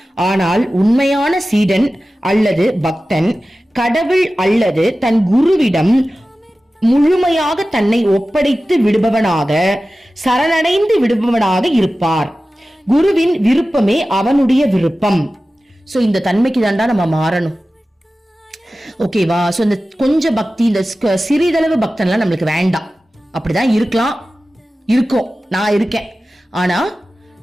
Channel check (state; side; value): normal; both; correlation 0.95